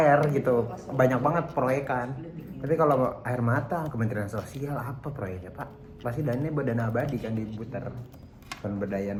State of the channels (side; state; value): both; identical; correlation 1.00